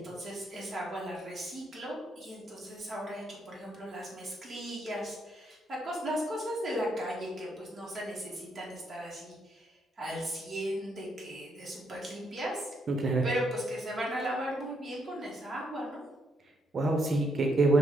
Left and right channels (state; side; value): normal; both; correlation 0.76